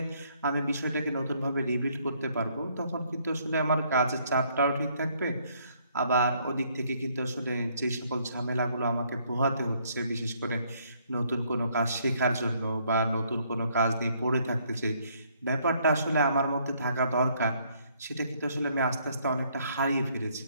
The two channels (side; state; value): both; inverted; correlation -0.67